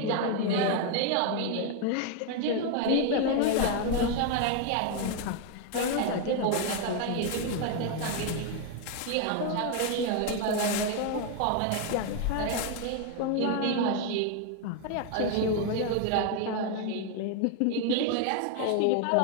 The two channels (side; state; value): both; different; correlation 0.01